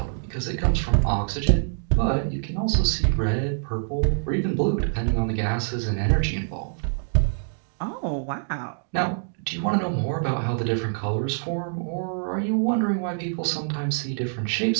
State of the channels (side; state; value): left; silent; digital silence